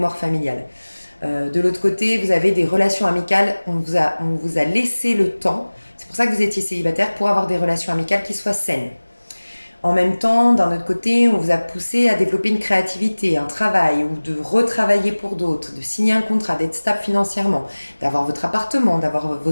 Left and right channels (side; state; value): both; inverted; correlation -1.00